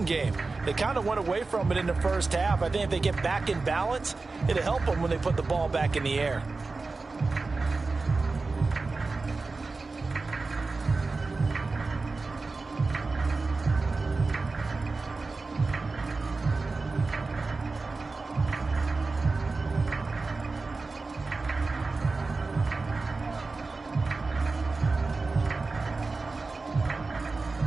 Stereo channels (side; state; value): left; quieter; 3.8 dB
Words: game. They kind of went away from it in the first half. I think if they get back in balance, it'll help them when they put the ball back in the air.